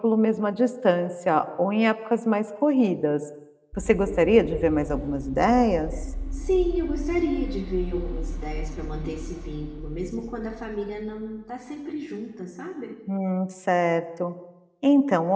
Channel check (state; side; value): identical; both; correlation 1.00